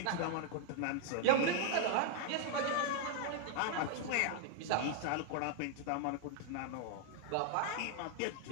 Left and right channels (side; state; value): both; different; correlation 0.00